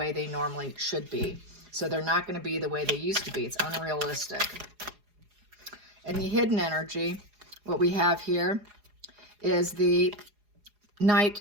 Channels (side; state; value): left; late; 4.8 ms